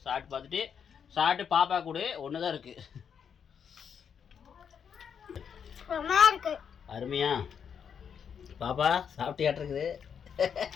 சாப்பிட்டு பார்த்துட்டு பாப்பா கூட ஒன்று தான் இருக்குது. அருமையா பாப்பா சாப்பிட்டியாட்டிருக்குது.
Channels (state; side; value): quieter; right; 7.4 dB